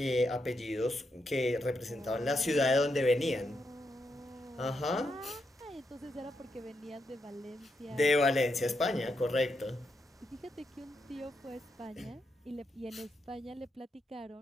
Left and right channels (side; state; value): both; normal; correlation 0.82